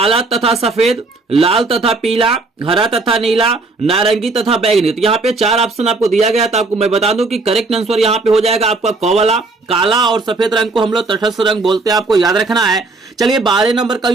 तथा सफेद, लाल तथा पीला, हरा तथा नीला, नारंगी तथा बैंगनी। तो यहाँ पे 4 ऑप्शन आपको दिया गया, तो आपको मैं बता दूं कि करेक्ट आंसर यहाँ पे हो जाएगा आपका क वाला। काला और सफेद रंग को हम लोग तटस्थ रंग बोलते हैं, आपको याद रखना है। चलिए 12 नंबर का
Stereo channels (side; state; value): left; quieter; 3.5 dB